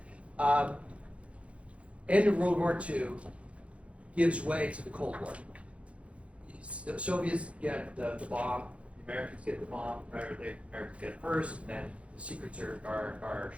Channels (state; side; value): late; left; 0.062 ms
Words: End of World War II gives way to the Cold War. The Soviets get the bomb, the Americans get the bomb, right? Or the Americans get it first, and then the secrets are